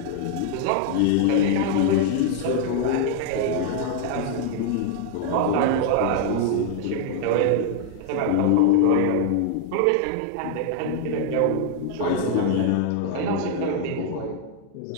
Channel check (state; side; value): different; both; correlation 0.00